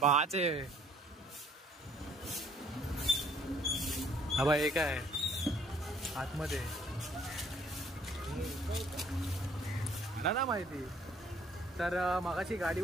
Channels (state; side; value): normal; both; correlation 0.61